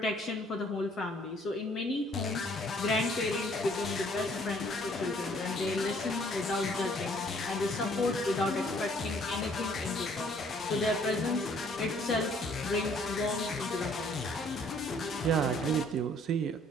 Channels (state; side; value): normal; both; correlation 0.61